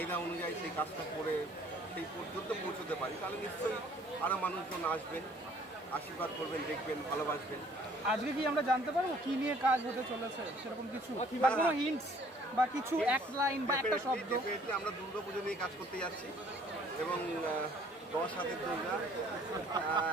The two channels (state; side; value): normal; both; correlation 0.57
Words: অনুযায়ী সেই কাজটা করে সেই পর্যন্ত পৌঁছতে পারি, তাহলে নিশ্চয়ই আরও মানুষজন আসবেন, আশীর্বাদ করবেন, দেখবেন, ভালোবাসবেন। আজকে কি আমরা জানতে পারবো কি নিয়ে কাজ হতে চলেছে, সেরকম কিছু বা কোনো হিন্টস বা কিছু এক লাইন বা একটা শব্দ? আমরা দুর্গাপুজো নিয়ে কাজ করতে যাচ্ছি, এবং 10 হাতের